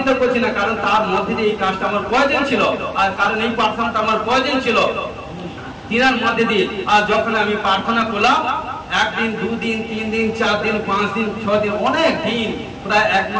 করছি না, কারণ তার মধ্যে দিয়ে এই কাজটা আমার প্রয়োজন ছিল, আর কারণ এই প্রার্থনাটা আমার প্রয়োজন ছিল তিনার মধ্যে দিয়ে। আর যখন আমি প্রার্থনা করলাম, একদিন, দুদিন, 3 দিন, 4 দিন, 5 দিন, 6 দিন, অনেক দিন, প্রায় 1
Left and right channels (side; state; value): both; identical; correlation 1.00